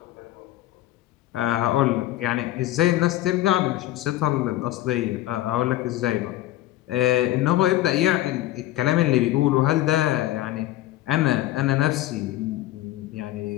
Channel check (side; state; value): right; quieter; 15.1 dB